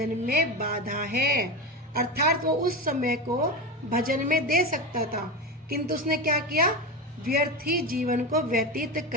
में बाधा है। अर्थात वो उस समय को भजन में दे सकता था, किंतु उसने क्या किया, व्यर्थ ही जीवन को व्यतीत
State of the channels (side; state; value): both; normal; correlation 0.20